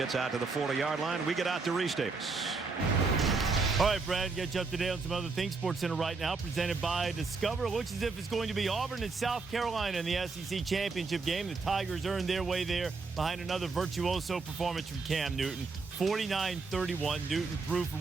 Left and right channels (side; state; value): left; quieter; 4.3 dB